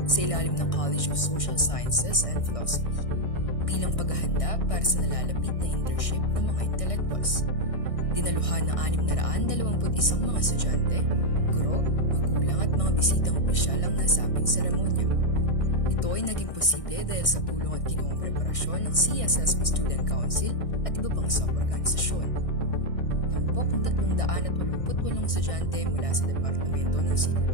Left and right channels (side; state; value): right; late; 1.6 ms